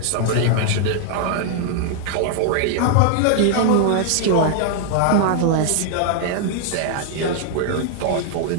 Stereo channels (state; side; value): different; both; correlation 0.00